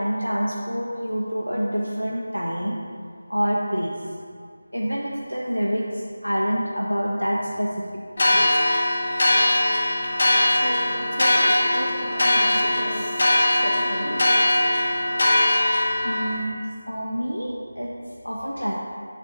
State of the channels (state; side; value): inverted; both; correlation -0.97